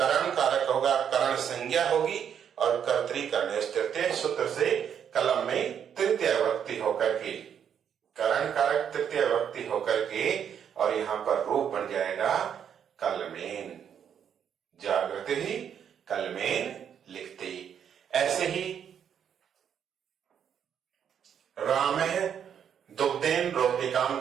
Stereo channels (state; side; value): quieter; left; 8.4 dB